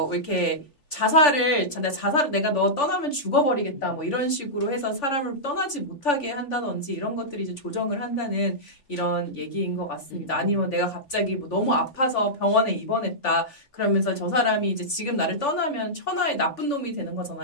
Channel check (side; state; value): right; late; 3.4 ms